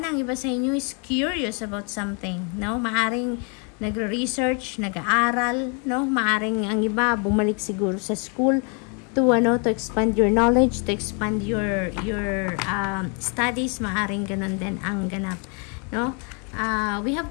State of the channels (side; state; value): right; quieter; 36.6 dB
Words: ang iba sa inyo is curious about something, no? Maaring nagre-research, nag-aaral, no? Maaring ang iba bumalik siguro sa school to expand your knowledge, to expand your studies, maaring ganon din ang ganap, no? We have